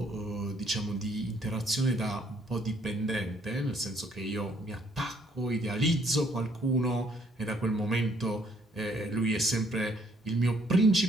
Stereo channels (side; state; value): both; normal; correlation 0.66